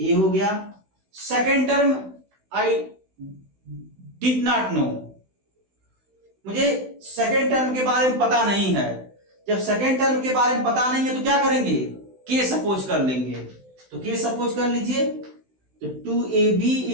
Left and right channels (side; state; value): left; late; 16 ms